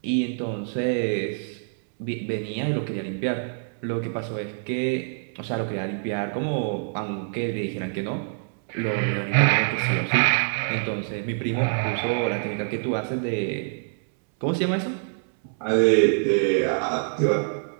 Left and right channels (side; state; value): left; silent; 61 dB below the other